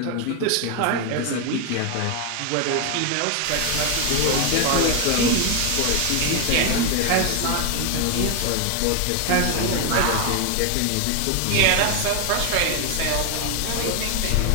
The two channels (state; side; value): different; both; correlation 0.01